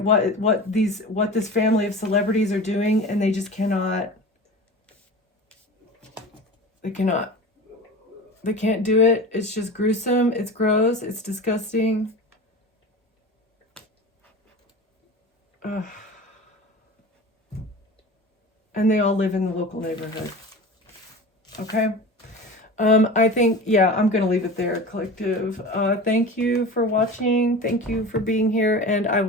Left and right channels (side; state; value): both; normal; correlation 0.33